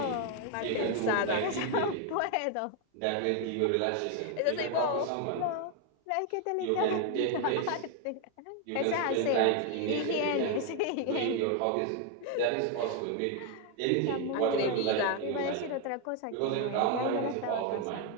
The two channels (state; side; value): different; both; correlation 0.01